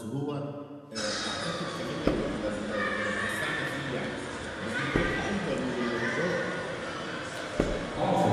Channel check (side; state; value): both; identical; correlation 1.00